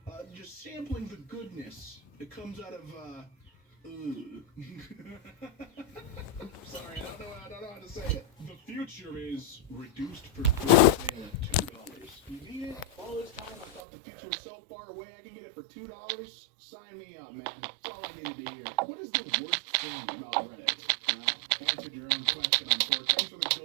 just sampling the goodness that comes out of, Sorry, I don't know how to say it. The future is reduced for good sale at $2. You need it? All this time I thought the future was so far away I can get it for $2? Sign me up, man. That's all I need to hear. What is the worst thing about Reddit? Answered your own question, unfortunately. Thanks for the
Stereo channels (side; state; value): left; drops out; at 13.8 s